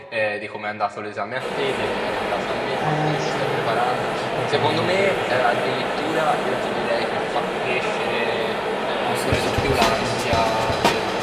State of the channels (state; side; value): identical; both; correlation 1.00